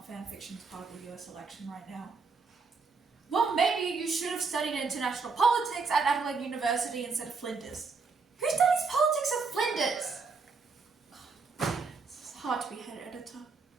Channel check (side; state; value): left; quieter; 4.7 dB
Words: fanfiction is part of the US election right now. Well, maybe you should have studied international politics at Adelaide University instead of Flinders. Who studies politics at Flinders? It's hard to be head editor.